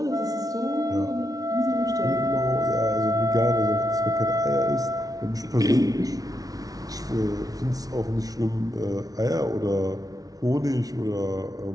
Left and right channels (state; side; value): late; left; 0.18 ms